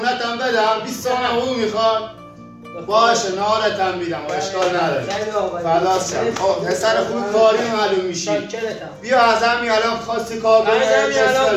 هم بدم. 20 تومن حقوق میخواد؟ باشه نهارت هم میدم، اشکال نداره. فداست شم. خب پسر خوب کاری معلوم میشی. بیا از همین الان خواستی کار کنی. بسم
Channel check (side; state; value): both; identical; correlation 1.00